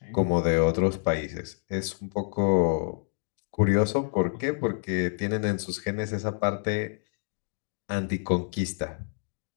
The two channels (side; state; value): right; silent; digital silence